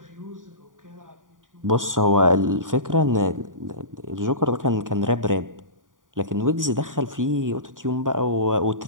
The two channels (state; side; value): late; left; 0.89 ms